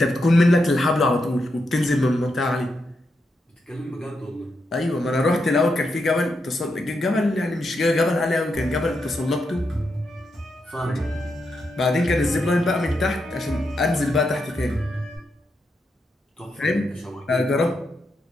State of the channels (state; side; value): normal; both; correlation 0.84